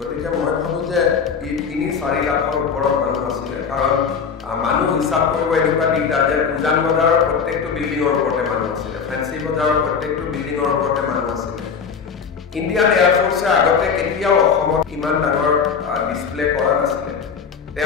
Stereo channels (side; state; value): right; quieter; 6.2 dB